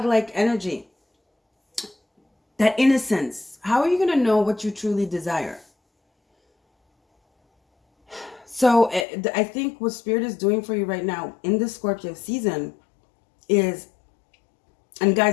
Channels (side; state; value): right; drops out; at 9.1 s